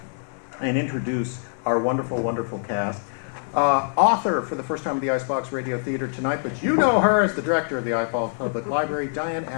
and introduce our wonderful, wonderful cast. Author for the first time at the Icebox Radio Theater tonight, but you know her as the director of the Icebox Public Library, Diane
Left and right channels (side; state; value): right; silent; digital silence